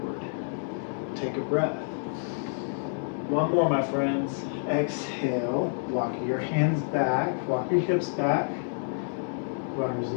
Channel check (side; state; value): right; silent; 59 dB below the other